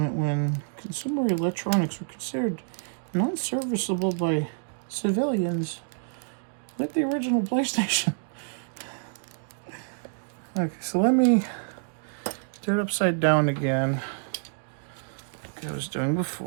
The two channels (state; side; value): silent; left; digital silence